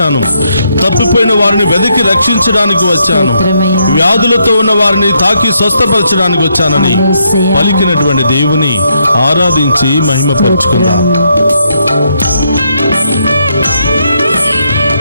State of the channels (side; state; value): both; inverted; correlation -0.77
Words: తప్పిపోయిన వారిని వెతికి రక్షించడానికి వచ్చాను, స్తోత్రమయ్యా. వ్యాధులతో ఉన్న వారిని తాకి స్వస్థపరచడానికి వచ్చానని యేసయ్యా. పలికినటువంటి దేవుని ఆరాధించి మహిమపరుచుకుందాం.